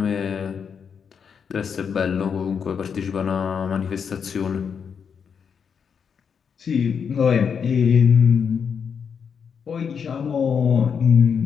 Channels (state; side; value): quieter; right; 6.8 dB